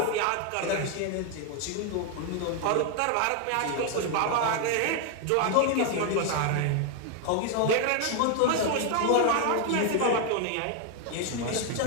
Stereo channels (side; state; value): both; different; correlation 0.01